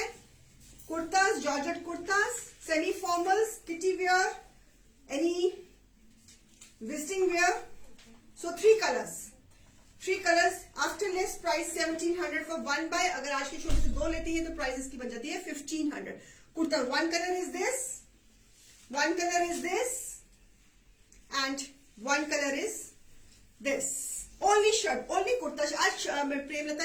kurtas, georgette kurtas, semi formals, kitty wear, any visiting wear. So 3 colors. After less price 1700 for 1 buy. अगर आज के शो से 2 लेती है तो प्राइस इसकी बन जाती है 1500. Kurta, one color is this and one color is this. Only shirt, only kurta. आज प्रेमलता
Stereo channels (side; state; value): both; identical; correlation 1.00